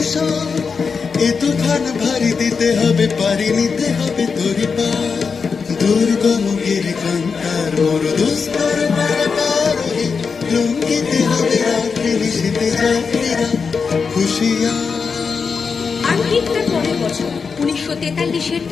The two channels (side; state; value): right; quieter; 5.4 dB